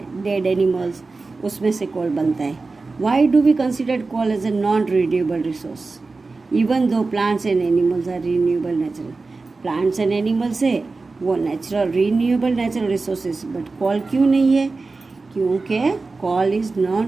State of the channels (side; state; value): left; quieter; 3.8 dB